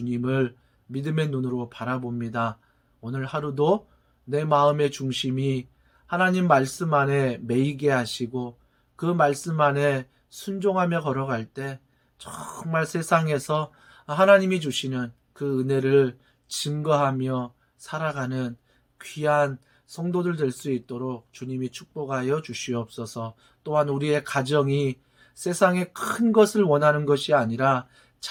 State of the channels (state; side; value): identical; both; correlation 1.00